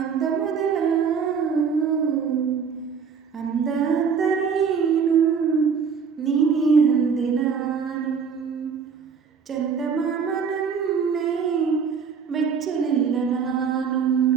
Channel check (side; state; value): left; quieter; 6.3 dB